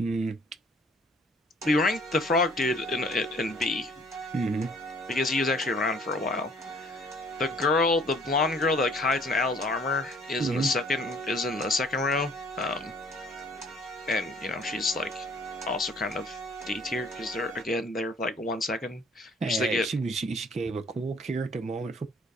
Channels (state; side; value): normal; both; correlation 0.57